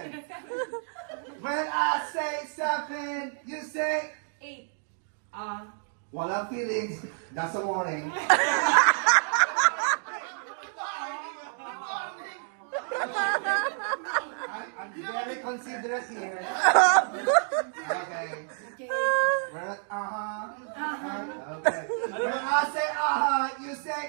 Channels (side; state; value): left; silent; 59 dB below the other